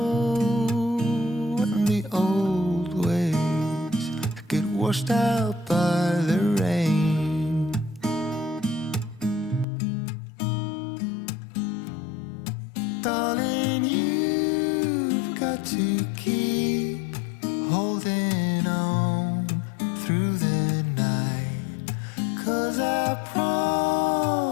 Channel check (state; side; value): drops out; right; at 9.7 s